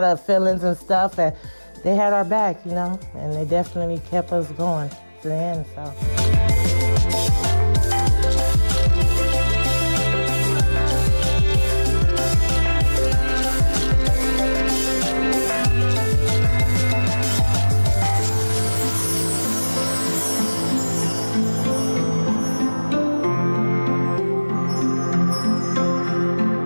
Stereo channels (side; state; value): both; inverted; correlation -1.00